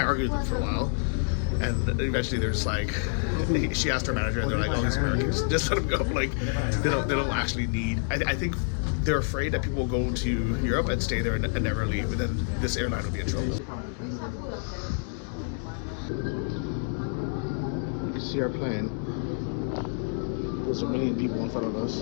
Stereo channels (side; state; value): right; silent; 58 dB below the other